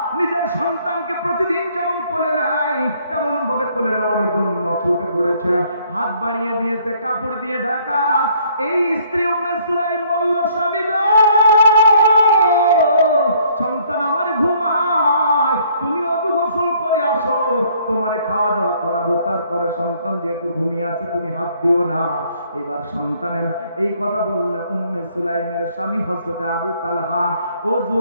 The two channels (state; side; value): inverted; both; correlation -0.63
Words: নিজের সন্তানকে প্রতিদিন যেমন কোলে নেয় তেমন ভাবে কোলে নেওয়ার জন্য ছুটে পড়েছে, হাত বাড়িয়ে দিয়েছে, কাপড় দিয়ে ঢাকা। এই স্ত্রী উম্মে সুলাইম বলল, স্বামী গো, সন্তান আমার ঘুমায়, তুমি অজু গোসল করে আসো, তোমারে খাওয়া দাওয়া করাবো, তারপরে সন্তান যেহেতু ঘুমিয়ে আছে তুমি হাত দিও না। এবার সন্তানের এই কথা বললে উম্মে সুলাইমের স্বামী হযরতে আবু তালহা অজু